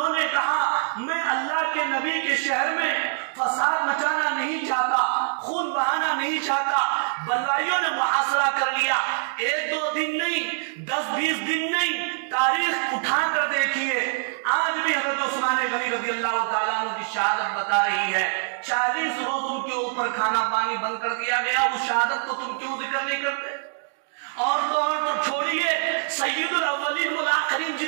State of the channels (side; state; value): left; silent; digital silence